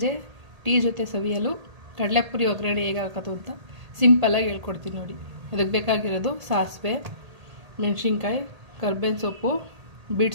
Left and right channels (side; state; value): left; late; 1.8 ms